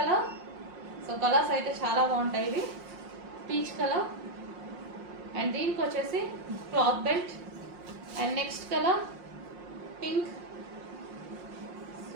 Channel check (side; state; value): left; late; 5.6 ms